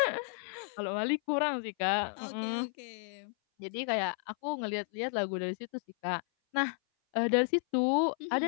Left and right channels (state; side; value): silent; right; 56 dB below the other